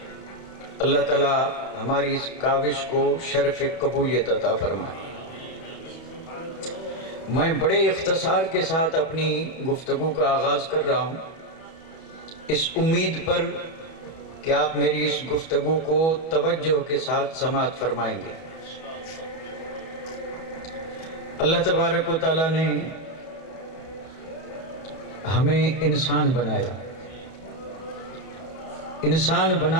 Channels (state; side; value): late; right; 31 ms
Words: اللہ تعالیٰ ہماری اس کاوش کو شرف قبولیت عطا فرمائے۔ میں بڑے اختصار کے ساتھ اپنی گفتگو کا آغاز کر رہا ہوں، اس امید پر کہ آپ میری اس گفتگو کو توجہ کے ساتھ سماعت فرمائیں گے۔ اللہ تبارک و تعالیٰ نے ہمیں انسان بنایا، انسان